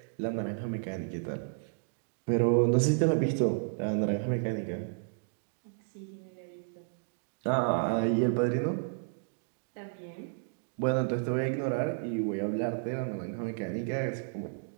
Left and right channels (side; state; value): left; silent; digital silence